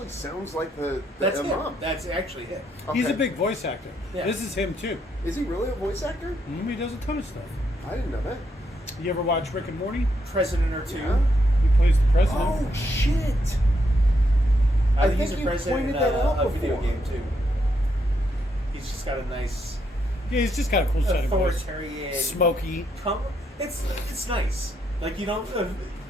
sounds like the That's him. Imam. That's actually him. He's a Okay. big voice actor. Yeah. This is him too. Is he really a voice actor? He does a ton of stuff. I didn't know that. You ever watch Rick and Morty? President or two. Yeah. He plays the president. Oh, shit! I I think he's think a you president in pointed that out a video before. game too. He's just got a nice Yeah, he's just got a cool set of voice. authoritarian. Smoky. It's nice. Like you don't.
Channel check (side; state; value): both; normal; correlation 0.77